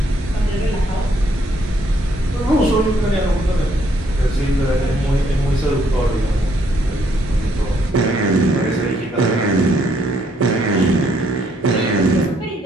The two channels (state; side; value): normal; both; correlation 0.70